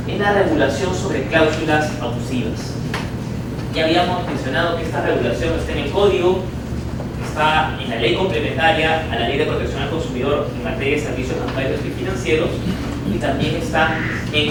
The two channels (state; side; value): identical; both; correlation 1.00